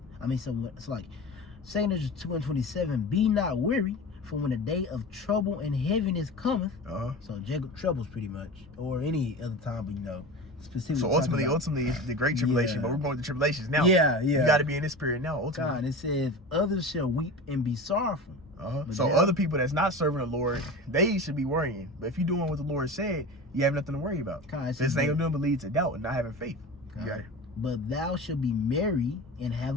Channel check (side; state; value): both; normal; correlation 0.31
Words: So it's like 2nd Ezra 2 and 27. Be not weary, for when the day of trouble and heaviness cometh. So Jacob troubles pretty much, or any other time, but specifically. So ultimately, it's the great tribulation, but we're going to tribulations now. Yeah. You got to be in this spirit now. Ultimately, God, it says, others shall weep and be sorrowful. So other people that's not serving the Lord, they should be worrying. But if you're doing what the Lord said, you have nothing to worry about. This ain't gonna lead to doubt and not having faith. You got it. But thou shalt be merry and